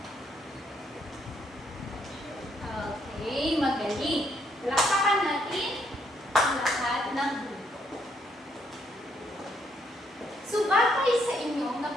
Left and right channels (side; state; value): both; normal; correlation 0.72